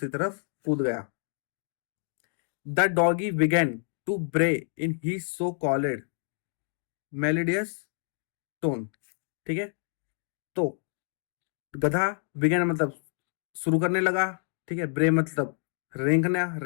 तरफ कूद गया। द डॉगी बिगेन टू ब्रे इन ही सो कॉल्ड मेलोडियस टोन। ठीक है, तो गधा, बिगेन मतलब शुरू करने लगा, ठीक है, ब्रे मतलब रेंकना,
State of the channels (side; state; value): right; silent; digital silence